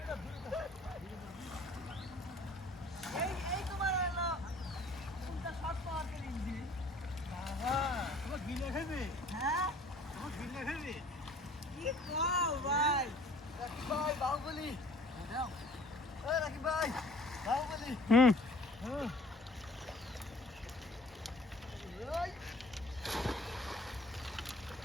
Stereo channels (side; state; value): both; normal; correlation 0.52